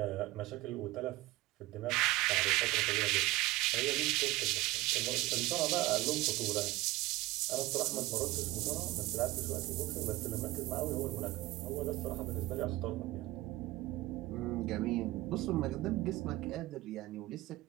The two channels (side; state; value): left; quieter; 18.7 dB